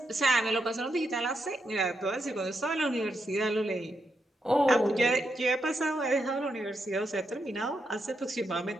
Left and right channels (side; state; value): both; normal; correlation 0.82